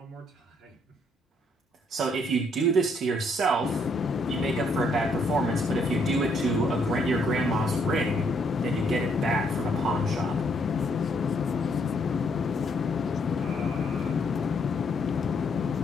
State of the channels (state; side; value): normal; both; correlation 0.71